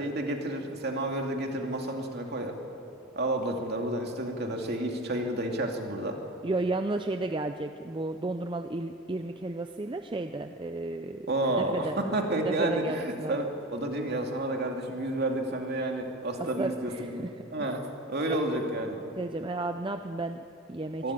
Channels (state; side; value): normal; both; correlation 0.32